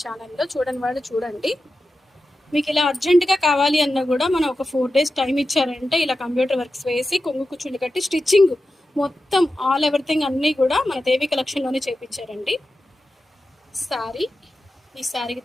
ఛానల్లో. చూడని వాళ్ళు చూడండి. మీకు ఇలా అర్జెంటుగా కావాలి అన్నా కూడా మనం ఒక 4 days టైం ఇచ్చారంటే ఇలా కంప్యూటర్ వర్క్స్ వేసి కొంగు కుచ్చుళ్ళు కట్టి స్టిచ్చింగ్ మొత్తం ఆల్ ఎవ్రీథింగ్ అన్నీ కూడా మన దేవి కలెక్షన్లోనే చేయించారండి. శారీ, ఈ శారీకి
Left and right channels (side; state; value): both; normal; correlation 0.92